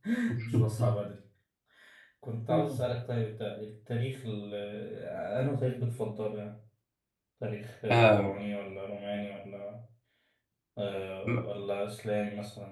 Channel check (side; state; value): both; identical; correlation 1.00